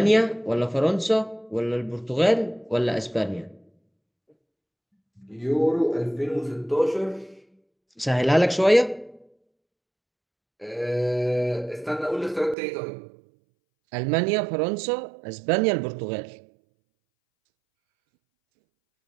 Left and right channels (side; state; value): left; drops out; at 12.6 s